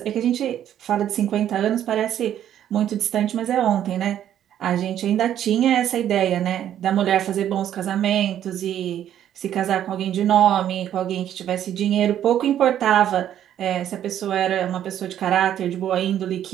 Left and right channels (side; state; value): left; quieter; 10.8 dB